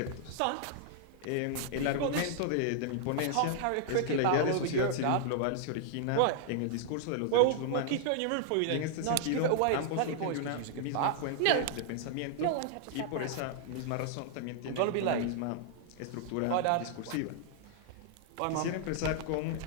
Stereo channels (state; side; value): different; both; correlation -0.01